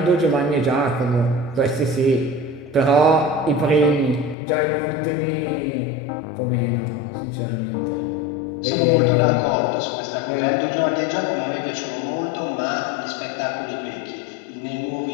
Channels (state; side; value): drops out; right; at 4.4 s